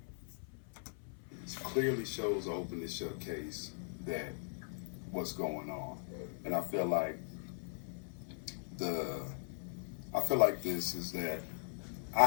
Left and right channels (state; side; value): silent; right; 51 dB below the other